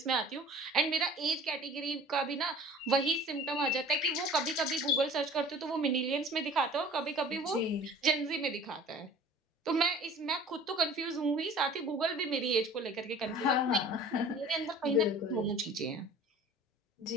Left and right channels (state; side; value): normal; both; correlation 0.45